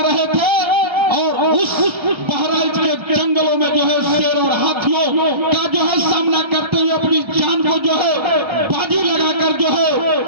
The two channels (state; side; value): late; left; 1.3 ms